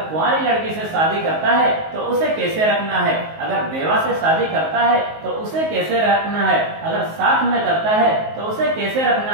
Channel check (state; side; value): late; left; 19 ms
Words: کنواری لڑکی سے شادی کرتا ہے تو اسے کیسے رکھنا ہے، اگر بیوہ سے شادی کرتا ہے تو اسے کیسے رکھنا ہے، اگر ساتھ میں کرتا ہے تو اسے کیسے